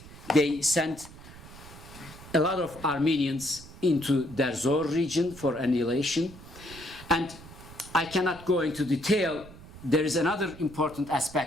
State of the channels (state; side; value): noise; right; rumble, 17 dB below the sound